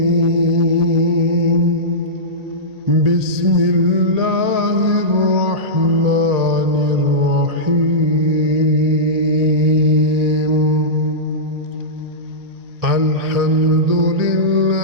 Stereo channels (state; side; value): late; left; 1.8 ms